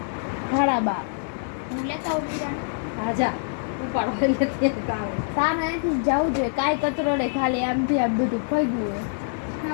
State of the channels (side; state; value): right; silent; digital silence